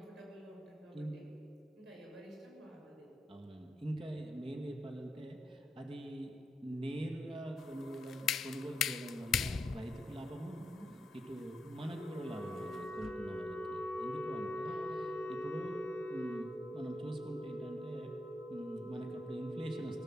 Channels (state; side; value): normal; both; correlation 0.83